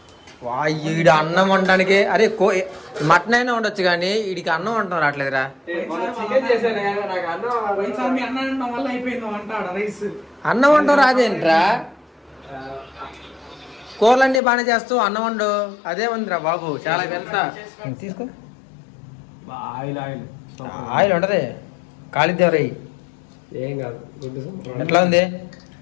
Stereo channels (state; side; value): drops out; right; at 14.4 s